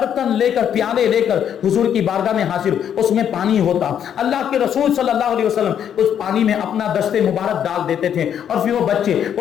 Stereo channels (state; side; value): quieter; right; 9.1 dB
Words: لے کر, پیالے لے کر حضور کی بارگاہ میں حاضر, اس میں پانی ہوتا. اللہ کے رسول صلی اللہ علیہ وسلم اس پانی میں اپنا دست مبارک ڈال دیتے تھے اور پھر وہ بچے